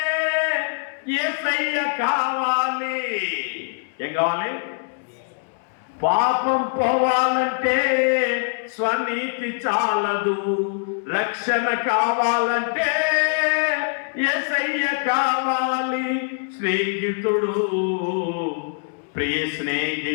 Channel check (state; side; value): silent; right; 63 dB below the other